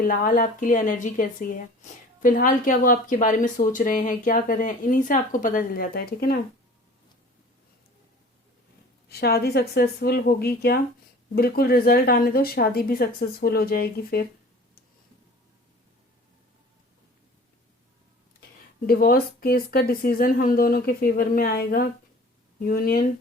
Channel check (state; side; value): normal; both; correlation 0.45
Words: आपके लिए एनर्जी कैसी है, फिलहाल क्या वो आपके बारे में सोच रहे हैं, क्या कर रहे हैं, इन्हीं से आपको पता चल जाता है। ठीक है ना? शादी सक्सेसफुल होगी क्या? बिल्कुल, रिजल्ट आने दो, शादी भी सक्सेसफुल हो जाएगी। फिर डिवोर्स केस का डिसीजन हम दोनों के फेवर में आएगा, यूनियन